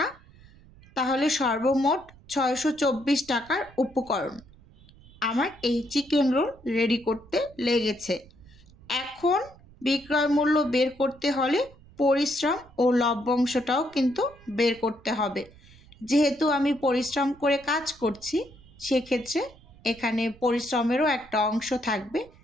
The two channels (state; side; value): noise; right; rumble, 24 dB below the sound